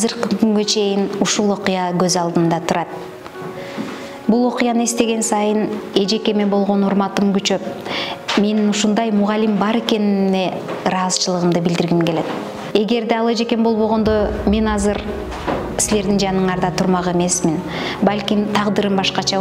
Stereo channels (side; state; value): both; identical; correlation 1.00